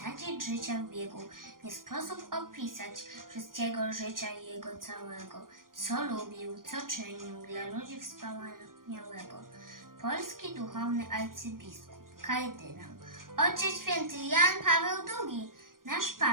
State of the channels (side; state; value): left; late; 0.91 ms